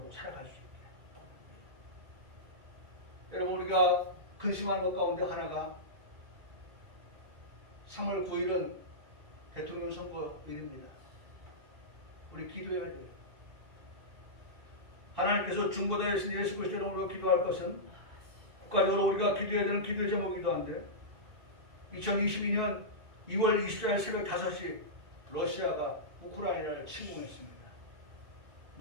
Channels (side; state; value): left; late; 1.9 ms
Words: 살아갈 수 있다. 여러분, 우리가 근심하는 것 가운데 하나가 3월 9일은 대통령 선거일입니다. 우리 기도해야 돼요. 하나님께서 중보자이신 예수 그리스도의 이름으로 기도할 것은 국가적으로 우리가 기도해야 되는 기도의 제목이기도 한데 2022년 2월 24일 새벽 5시 러시아가 우크라이나를 침공했습니다.